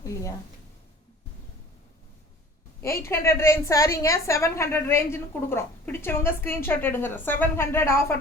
இல்லையா. 800 ரேஞ்ச் சாரிங்க 700 ரேஞ்சுன்னு கொடுக்குறோம். பிடிச்சவங்க ஸ்க்ரீன்ஷாட் எடுங்க. 700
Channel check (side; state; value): both; normal; correlation 0.45